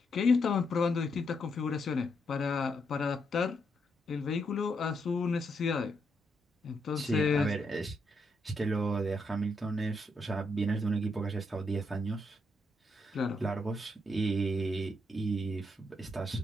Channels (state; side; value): normal; both; correlation 0.79